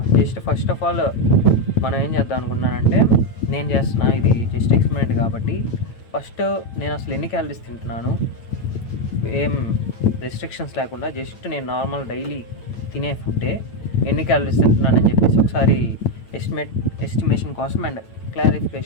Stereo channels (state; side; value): late; right; 9.0 ms